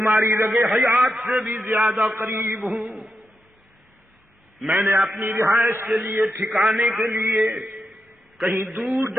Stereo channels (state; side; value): normal; both; correlation 0.86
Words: رگ حیات سے بھی زیادہ قریب ہوں۔ میں نے اپنی رہائش کے لیے، ٹھکانے کے لیے کہیں دور